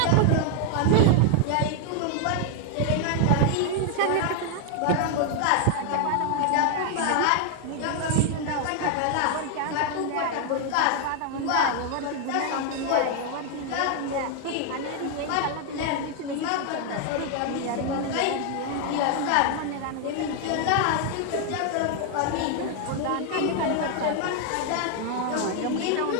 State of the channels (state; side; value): different; both; correlation 0.00